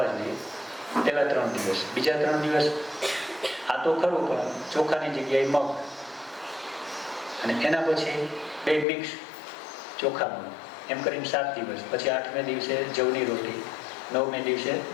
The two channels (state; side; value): drops out; right; at 8.8 s